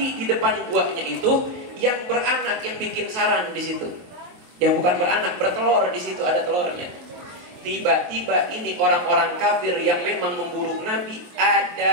di depan guanya itu yang beranak, yang bikin sarang di situ. Yang bukan beranak, bertelur di situ, ada telurnya. Tiba-tiba ini orang-orang kafir yang memang memburu Nabi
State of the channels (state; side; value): late; left; 23 ms